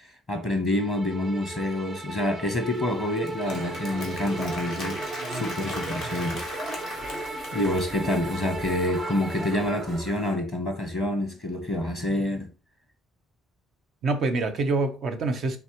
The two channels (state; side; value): normal; both; correlation 0.58